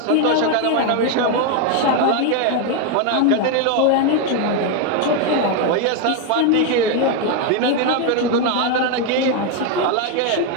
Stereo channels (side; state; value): both; different; correlation 0.01